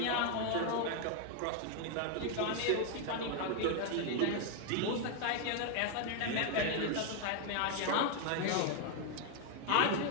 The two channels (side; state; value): both; different; correlation 0.01